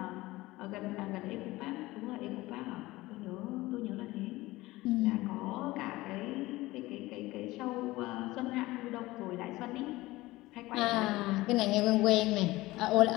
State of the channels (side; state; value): right; quieter; 19.1 dB